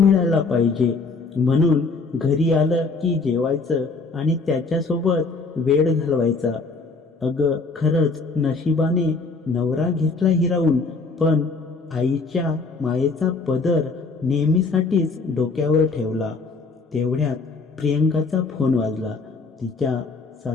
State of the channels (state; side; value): quieter; right; 4.0 dB